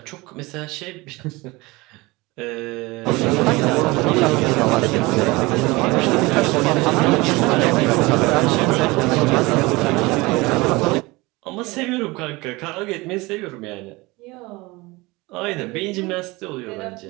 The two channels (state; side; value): quieter; left; 22.8 dB